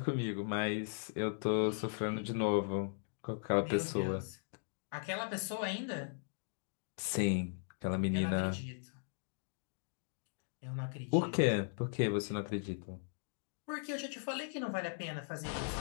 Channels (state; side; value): silent; right; digital silence